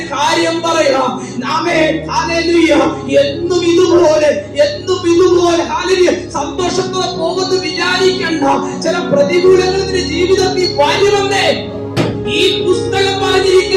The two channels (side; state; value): both; identical; correlation 1.00